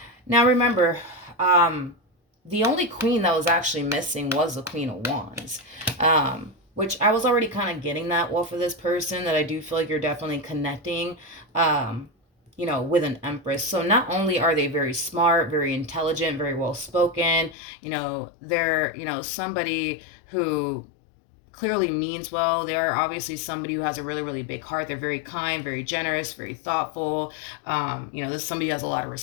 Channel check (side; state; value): right; drops out; at 17.6 s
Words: Now remember, the only queen that was actually missing was the Queen of Wands. Which I was already kind of getting that well for this person, that I do feel like you're definitely connecting, with an Empress. So not only are they very smart, very intelligent, very well spoken, they're, somebody who clearly means well. They are obviously somebody who has a really, really big heart. They're very kind, very generous, very thoughtful. This is somebody who has a lot of